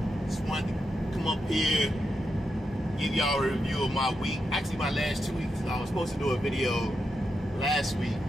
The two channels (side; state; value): both; normal; correlation 0.86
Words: just wanted to come up here, give y'all a review of my week. Actually, my last 2 weeks. I was supposed to do a video last week.